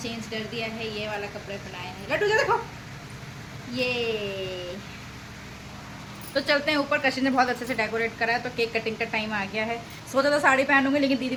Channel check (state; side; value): identical; both; correlation 1.00